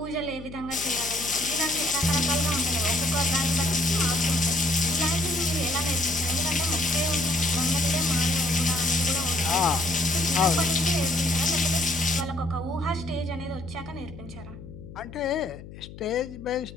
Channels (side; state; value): left; noise; hum, 15 dB below the sound